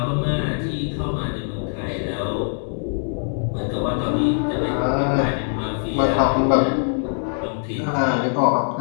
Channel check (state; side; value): silent; right; 64 dB below the other